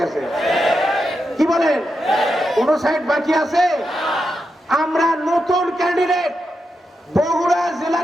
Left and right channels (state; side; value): normal; both; correlation 0.87